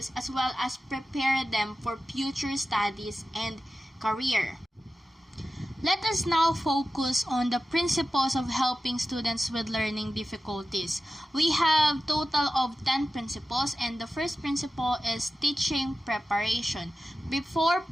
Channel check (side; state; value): both; normal; correlation 0.93